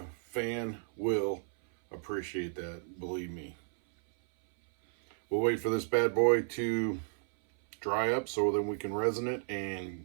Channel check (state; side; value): silent; left; 56 dB below the other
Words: fan will appreciate that, believe me. We'll wait for this bad boy to dry up so then we can resin it